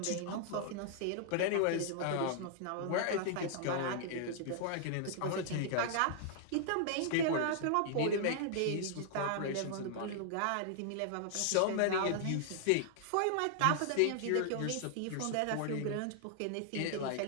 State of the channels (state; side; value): different; both; correlation -0.01